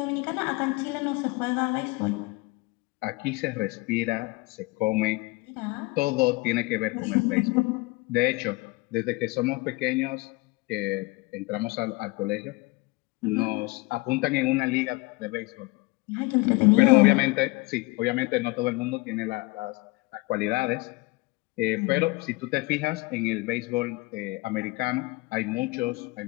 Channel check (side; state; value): right; quieter; 24.2 dB